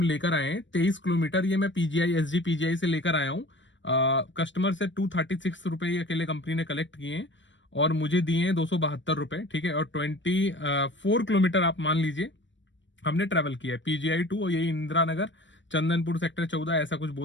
लेकर आए हैं 23 किलोमीटर। ये मैं पीजीआई एसजी पीजीआई से लेकर आया हूँ। कस्टमर से 236 रुपए अकेले कंपनी ने कलेक्ट किए हैं, और मुझे दिए हैं 272 रुपए, ठीक है। और 24 किलोमीटर आप मान लीजिए हमने ट्रेवल किया है पीजीआई टू, और यही इंदिरा नगर चंदनपुर सेक्टर 14 ऐसा कुछ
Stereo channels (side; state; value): right; late; 0.54 ms